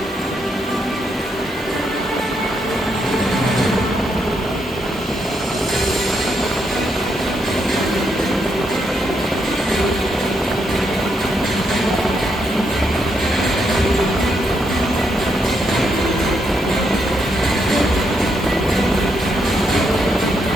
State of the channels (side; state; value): both; normal; correlation 0.78